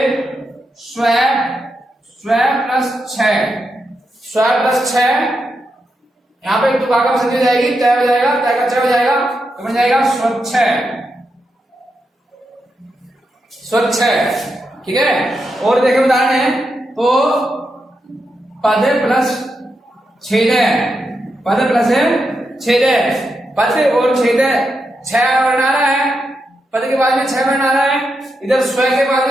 स्व प्लस 6, यहाँ पे तुकागम संधि हो जाएगी, तय हो जाएगा, तय का च हो जाएगा, तो बन जाएगा स्वच्छ। ठीक है, और देखें उदाहरण है तो पद प्लस छेद, पद और छेद 6 वर्ण आ रहा है, पद के बाद में 6 वर्ण आ रहा है, इधर स्व के बाद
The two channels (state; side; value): normal; both; correlation 0.85